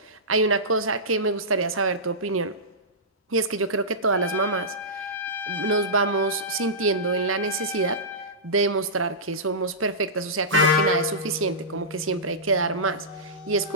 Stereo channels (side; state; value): both; normal; correlation -0.17